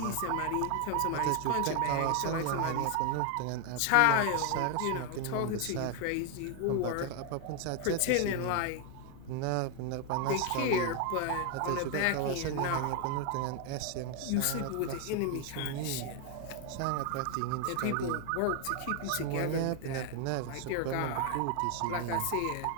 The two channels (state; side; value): different; both; correlation 0.01